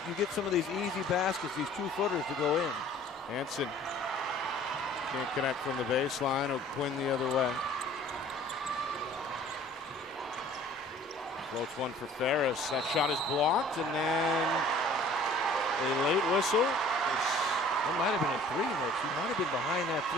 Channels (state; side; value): normal; both; correlation 0.50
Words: you get some of these easy baskets, these 2-footers to go in. Hansen can't connect from the baseline. O'Quinn the other way. Floats one for Ferris. That shot is blocked, and then a late whistle. That might have been a 3, Nick. She might have been behind that